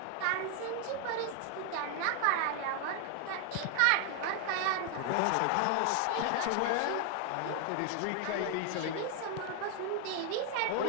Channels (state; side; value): different; both; correlation 0.00